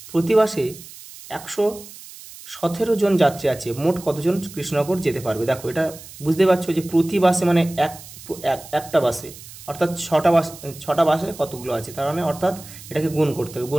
প্রতি বাসে 117 জন যাত্রী আছে, মোট কতজন কৃষ্ণনগর যেতে পারবে? দেখো এটা বুঝতে পারছো যে প্রতি বাসে মানে একটা বাসে, অর্থাৎ 6টা বাসে কতগুলো আছে, তার মানে অর্থাৎ এটাকে গুণ করতে হবে,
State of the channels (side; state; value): right; noise; hiss, 17 dB below the sound